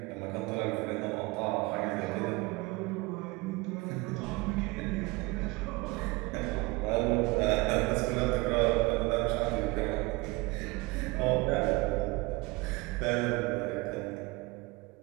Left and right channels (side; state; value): left; quieter; 24.0 dB